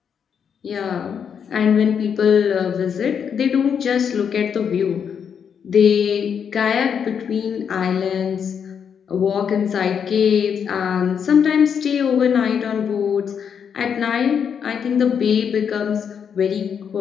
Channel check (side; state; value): right; quieter; 7.4 dB